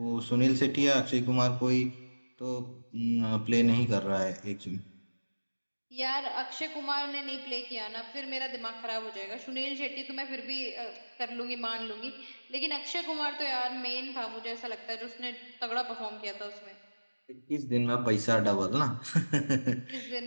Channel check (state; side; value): inverted; both; correlation -1.00